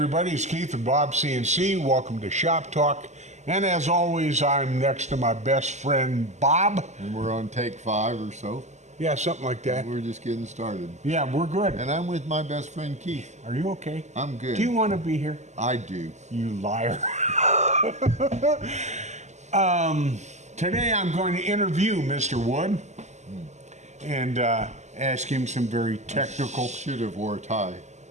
everybody, it's Keith and Bob CNC. Welcome to Shop Talk. And as always, I'm next to my best friend, Bob. And we're on take 5 or so. Yeah, something like that. We're just getting started. Yeah, we're good. And I'm with my best friend, Keith. Are you okay? I'm good. Do you want to be here? I do. You liar. Today I'm going to interview Mr. Wood and ask him some very technical Should have wore a tie.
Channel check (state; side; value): late; left; 0.33 ms